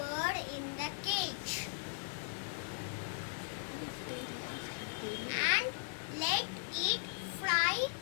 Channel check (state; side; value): silent; right; digital silence